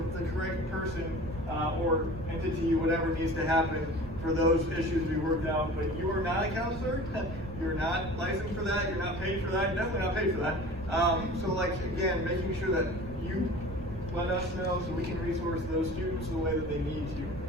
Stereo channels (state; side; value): noise; right; rumble, 12 dB below the sound